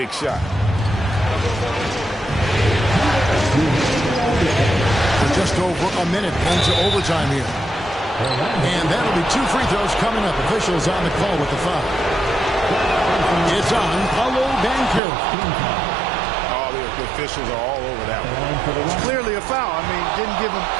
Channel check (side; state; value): left; drops out; at 15.0 s